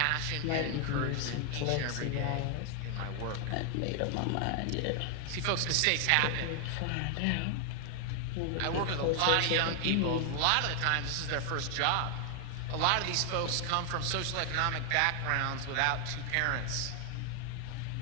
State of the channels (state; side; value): different; both; correlation 0.00